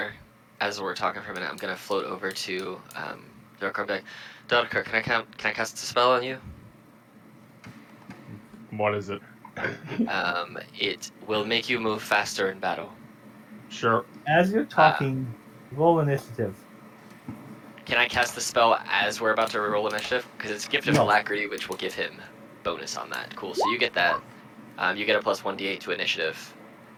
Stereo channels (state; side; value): identical; both; correlation 1.00